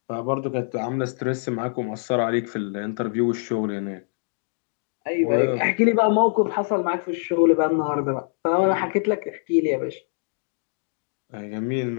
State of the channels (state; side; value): silent; right; digital silence